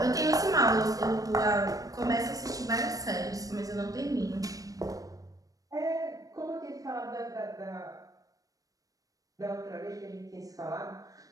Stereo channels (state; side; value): late; left; 0.17 ms